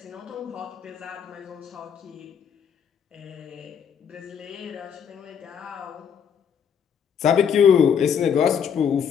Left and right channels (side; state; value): right; quieter; 7.6 dB